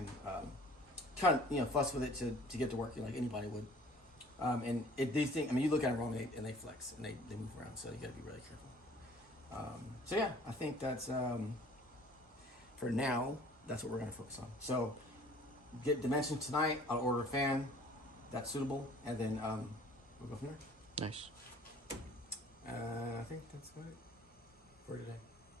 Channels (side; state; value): both; normal; correlation 0.52